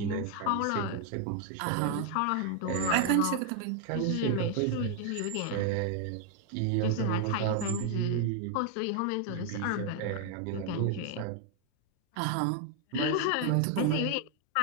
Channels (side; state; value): both; different; correlation 0.00